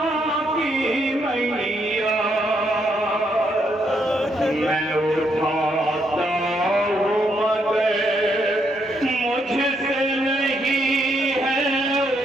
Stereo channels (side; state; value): both; normal; correlation 0.76